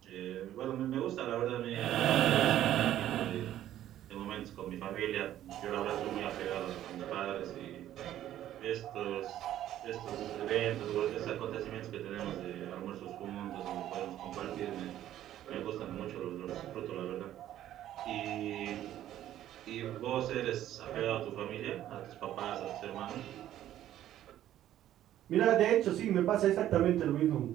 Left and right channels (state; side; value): quieter; left; 12.4 dB